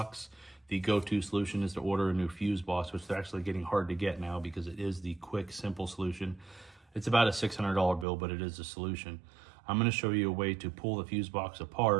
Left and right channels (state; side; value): drops out; left; at 8.1 s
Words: The go-to solution is to order a new fuse box, which they're actually getting hard to get now because it is the quick, simple solution. It's about a $600 bill, but it is a solution. I'm going to show you a way to pull the fuse box